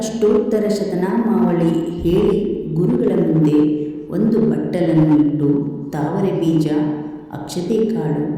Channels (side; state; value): both; identical; correlation 1.00